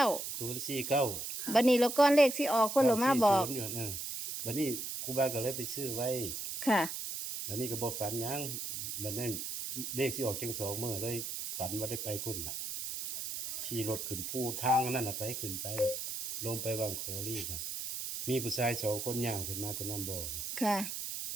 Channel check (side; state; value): right; noise; hiss, 4 dB below the sound